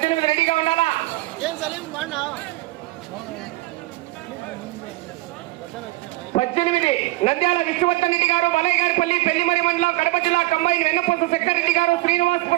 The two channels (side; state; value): left; quieter; 20.0 dB